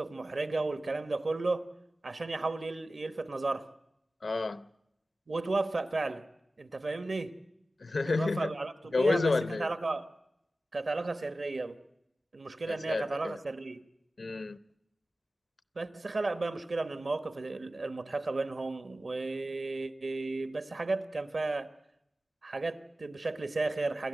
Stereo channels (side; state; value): both; normal; correlation 0.95